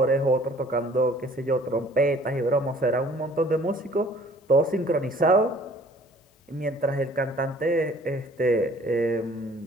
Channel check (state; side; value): normal; both; correlation 0.54